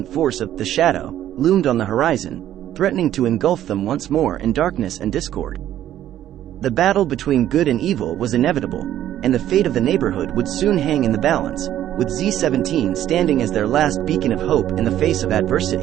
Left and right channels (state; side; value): quieter; left; 12.0 dB